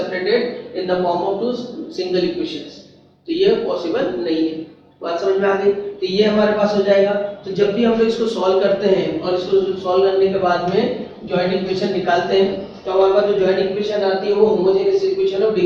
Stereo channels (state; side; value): identical; both; correlation 1.00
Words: in the form of two single equations। तो ये पॉसिबल नहीं है। बात समझ में आ गई। तो ये हमारे पास हो जाएगा। तो जब भी हम लोग इसको सॉल्व करते हैं और इसको सॉल्व करने के बाद में जॉइंट इक्वेशन निकालते हैं, तो हमारे पास जो जॉइंट इक्वेशन आती है वो होमोजेनियस इक्वेशन ऑफ